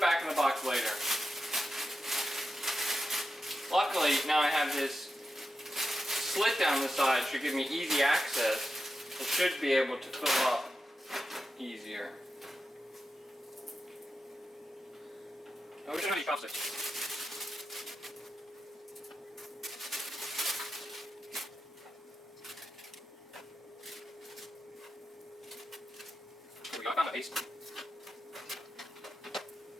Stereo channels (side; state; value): both; normal; correlation 0.89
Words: back in the box later. Luckily, now I have this slit down the side, should give me easy access. It should be able to fill up easier. Oh, we shouldn't have any chopsticks. Here we go, I found a paste.